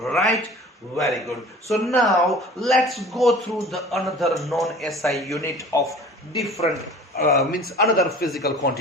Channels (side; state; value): both; normal; correlation 0.44